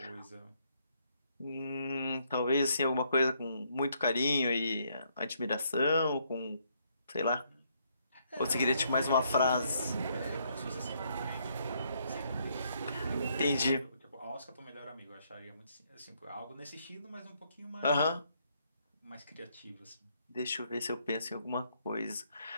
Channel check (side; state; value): both; inverted; correlation -0.72